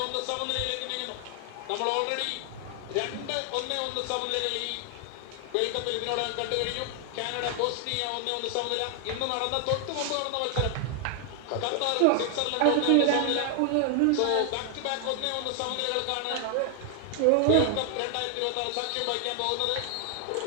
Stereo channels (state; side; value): different; both; correlation 0.00